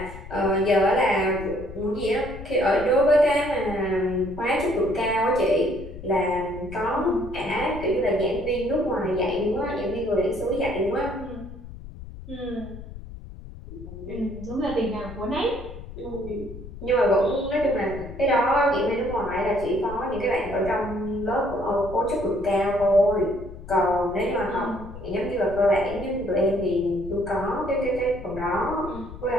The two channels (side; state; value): left; noise; rumble, 13 dB below the sound